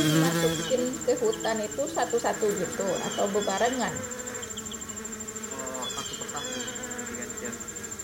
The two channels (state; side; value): identical; both; correlation 1.00